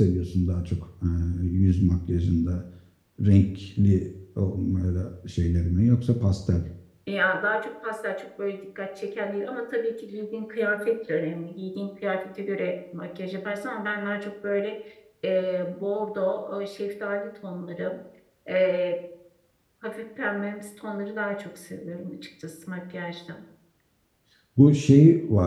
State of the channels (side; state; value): both; identical; correlation 1.00